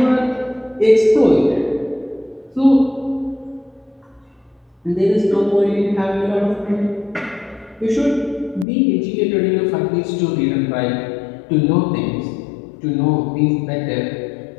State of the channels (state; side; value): drops out; right; at 8.7 s